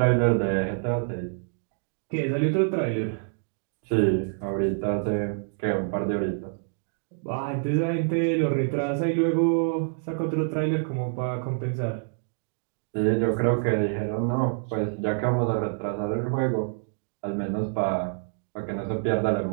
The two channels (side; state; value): left; silent; digital silence